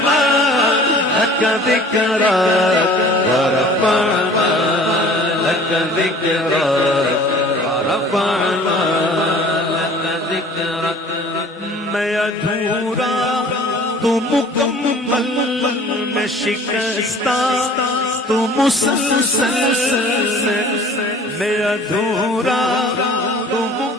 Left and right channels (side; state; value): both; normal; correlation 0.48